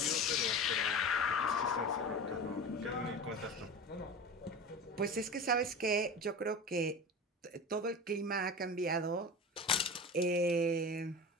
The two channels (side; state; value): both; normal; correlation 0.31